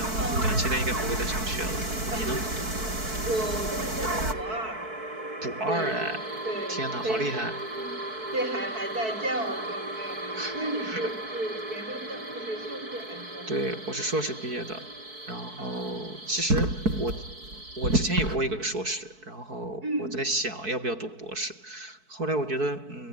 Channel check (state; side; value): late; left; 4.6 ms